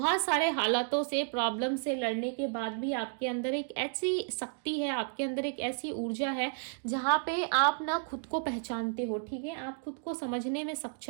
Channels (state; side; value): silent; left; 56 dB below the other